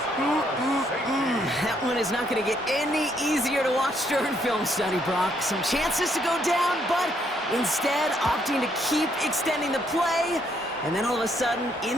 That one is not going to get any easier to watch during film study, Brock. Some chances to go down, but instead opting to keep extending the play, and then all of a sudden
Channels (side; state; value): both; normal; correlation 0.71